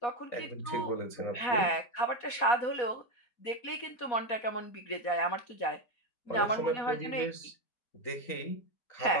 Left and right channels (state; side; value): late; right; 4.2 ms